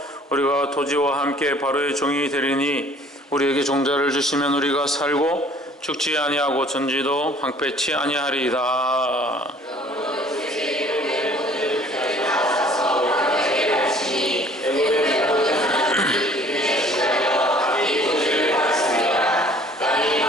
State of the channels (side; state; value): both; normal; correlation 0.54